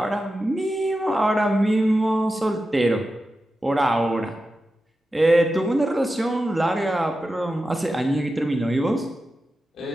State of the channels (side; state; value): both; normal; correlation 0.91